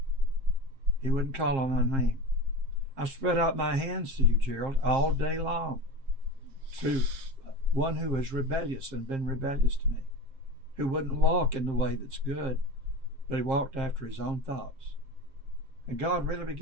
He wouldn't call on my name. I spread out my hands to you, Gerald, all day long, to one who is rebellious and been rebellious to me, who wouldn't walk in the way that's good, but he walked after his own thoughts. And God really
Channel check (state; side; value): late; left; 7.5 ms